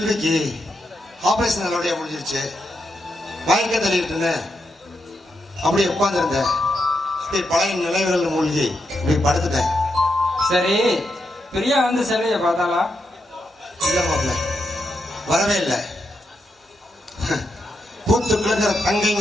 operation நல்லபடியா முடிஞ்சிருச்சு. மயக்க தள்ளிட்டு அப்படியே உட்கார்ந்துருந்தேன். அப்படியே பழைய நினைவுகள் மூழ்கி இப்படி படுத்துட்டேன். சரி, பிரியா வந்து செல்வியை பார்த்தாளா? இல்ல மாப்பிள்ள, வரவே இல்லை. பூத்து கிழங்குற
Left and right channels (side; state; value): both; normal; correlation 0.84